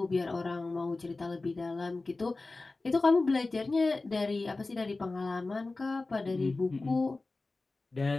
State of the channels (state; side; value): quieter; right; 3.4 dB